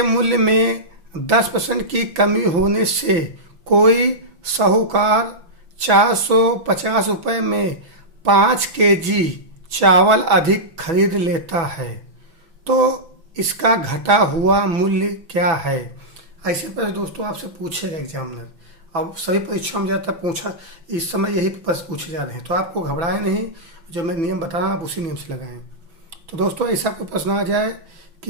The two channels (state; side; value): late; left; 6.1 ms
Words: मूल्य में 10% की कमी होने से कोई साहूकार 450 रुपये में 5 केजी चावल अधिक खरीद लेता है, तो इसका घटा हुआ मूल्य क्या है। ऐसे पर दोस्तों आपसे पूछेगा एग्जामिनर, अब सभी परीक्षाओं में ज़्यादातर पूछा इस समय यही प्रश्न पूछे जा रहे हैं, तो आपको घबराए नहीं, जो मैं नियम बता रहा हूँ आप उसी नियम से लगाएं। तो दोस्तों ऐसा कोई प्रश्न आ जाए